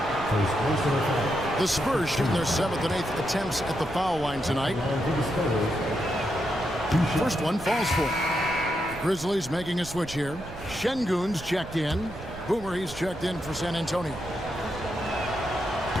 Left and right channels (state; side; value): noise; right; rumble, 15 dB below the sound